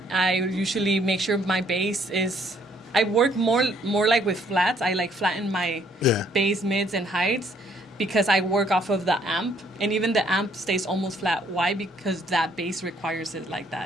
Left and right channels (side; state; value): both; normal; correlation 0.65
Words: usually make sure my bass is. I work more like with flats. I like flatten my Yeah. bass, mids, and heights because I work off of the amp, and even the amp stays almost flat. Why? Because that bass requires it like